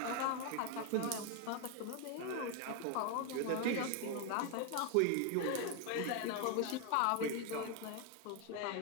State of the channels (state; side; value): different; both; correlation 0.01